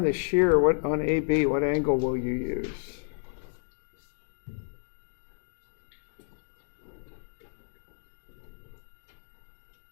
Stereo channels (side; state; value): right; silent; digital silence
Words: the shear, what on AB, what angle will you use?